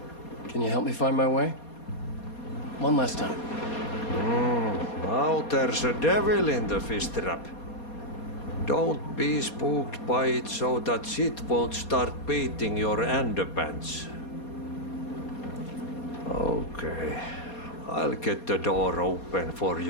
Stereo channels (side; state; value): right; late; 4.2 ms